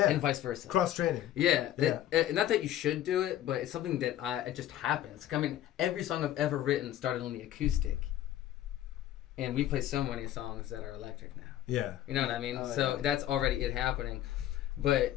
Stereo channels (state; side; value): quieter; right; 12.5 dB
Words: And vice versa. Cross training. Yeah. Not that you should do it, but it's something that it just happens. I mean, every song I've ever written started on the acoustic. And we play so many songs that are electric now. Yeah. You know what I mean? That's already it happening. But,